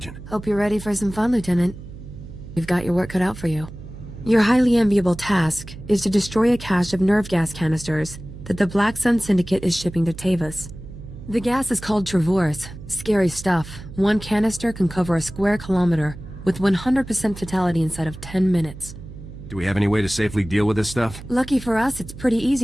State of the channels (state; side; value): noise; right; hum, 14 dB below the sound